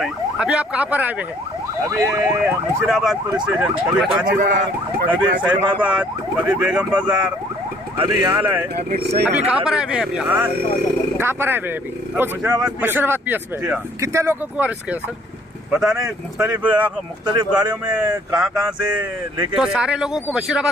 हैं। अभी आप कहाँ पर आए हुए हैं? अभी मुशीराबाद पुलिस स्टेशन, कभी काचीगुड़ा, कभी सैफाबाद, कभी बेगम बाजार, अभी यहाँ लाए। अभी कहाँ पर आए हुए हैं? अभी कहाँ पर आए हुए हैं? अभी मुशीराबाद पीएस में। कितने लोगों को अरेस्ट किया सर? पता नहीं, मुख्तलिफ गाड़ियों में कहाँ से लेके। तो सारे लोगों को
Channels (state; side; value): normal; both; correlation 0.60